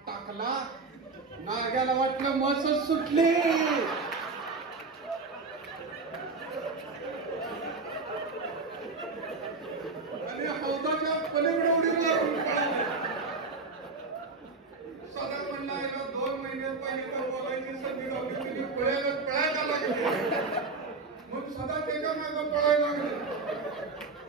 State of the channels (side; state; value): left; quieter; 4.0 dB